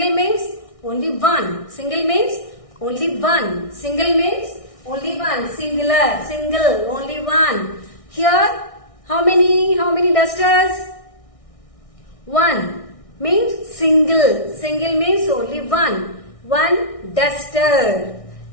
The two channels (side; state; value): right; late; 1.6 ms